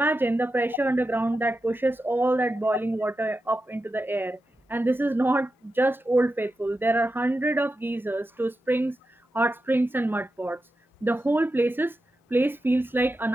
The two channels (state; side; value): normal; both; correlation 0.90